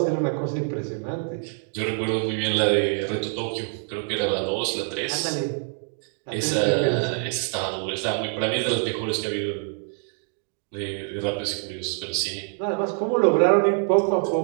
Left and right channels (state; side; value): silent; left; 56 dB below the other